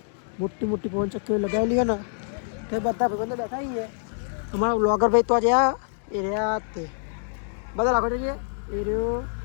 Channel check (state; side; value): silent; right; digital silence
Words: મોટી મોટી પવન ચક્કીઓ લગાવેલી હોય ને તે બધા ભાઈબંધો બેઠા છીએ. અમારા વ્લોગર ભાઈ તો જ્યાં એ રહ્યા તે બધા લાખો છે એ રહ્યો.